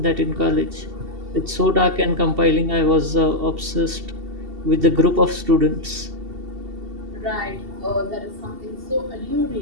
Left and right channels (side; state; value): left; late; 2.7 ms